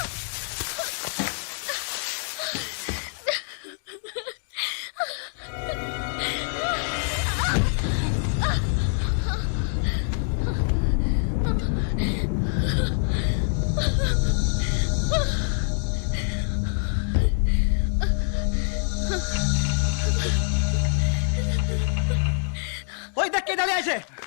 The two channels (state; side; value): silent; right; digital silence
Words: ওই দেখ কে দাঁড়িয়ে আছে।